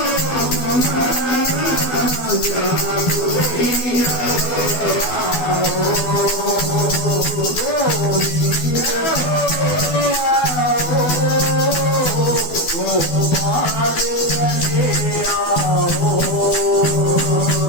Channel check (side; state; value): right; late; 12 ms